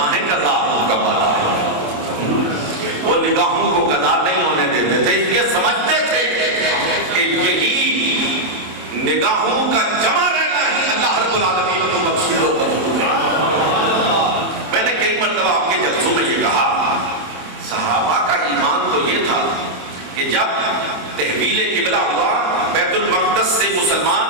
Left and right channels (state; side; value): late; left; 27 ms